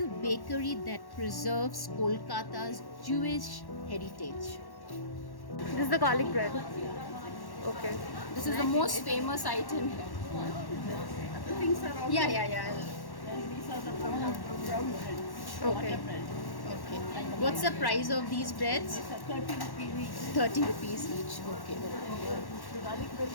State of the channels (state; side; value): late; right; 1.1 ms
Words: bakery that preserves Kolkata's Jewish heritage. This is the garlic bread. Okay. This is the most famous item here. Yeah, yeah, yeah. These are the brown breads. Okay. Butter bread. Okay. What's the price of these breads? These are 30 rupees each. 30 rupees each. Okay. The garlic bread